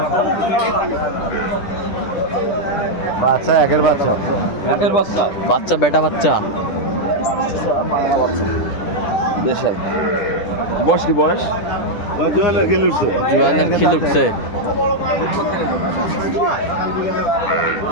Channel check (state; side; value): late; right; 10 ms